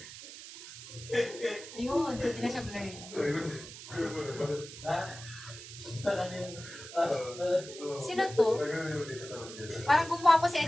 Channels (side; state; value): right; noise; hiss, 13 dB below the sound